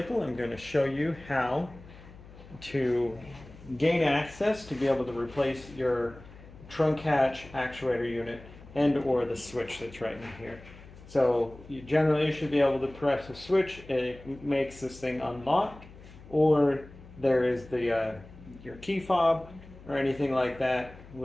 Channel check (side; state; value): left; noise; hum, 19 dB below the sound